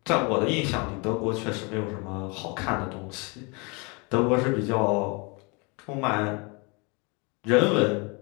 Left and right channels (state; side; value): quieter; right; 30.5 dB